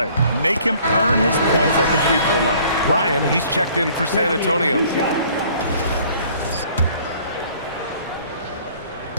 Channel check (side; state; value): both; inverted; correlation -0.55